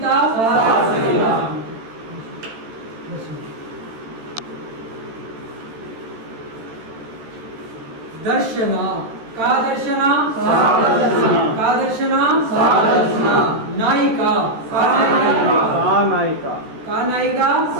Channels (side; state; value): left; late; 13 ms